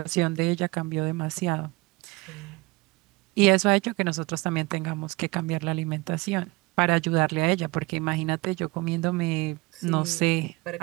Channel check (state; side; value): quieter; left; 23.7 dB